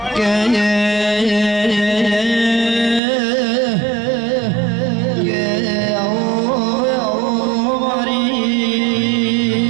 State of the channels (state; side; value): drops out; left; at 3.0 s